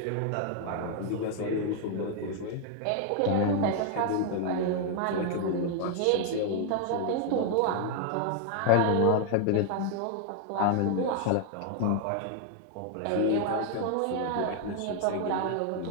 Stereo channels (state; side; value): different; both; correlation 0.00